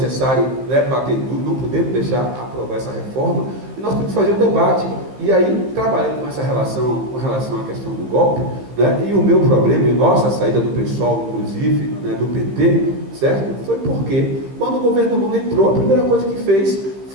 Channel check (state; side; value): late; left; 15 ms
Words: né, bater duro, não podemos deixar aprovar essa reforma, e nós temos que fazer um debate. E aí, trabalhando com essa relação, com relação à questão do golpe, né, e o meu problema, e nossa saída do PSOL, inclusive, né, do PT, certo? Foi porque, quando o governo Lula entrou, a primeira coisa que fez